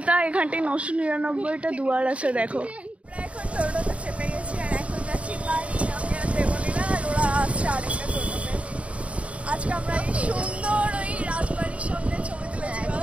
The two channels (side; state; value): left; late; 0.064 ms